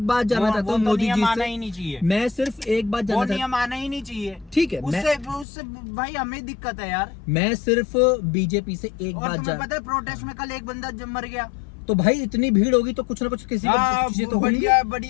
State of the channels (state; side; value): drops out; right; at 5.5 s